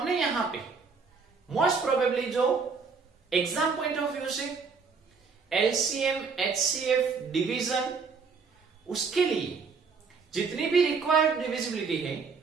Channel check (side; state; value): left; quieter; 5.1 dB